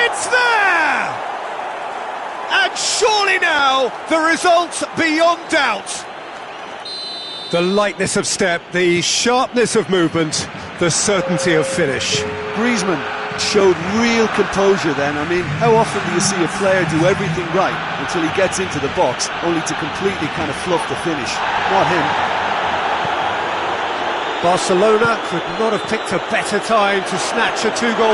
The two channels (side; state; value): both; identical; correlation 1.00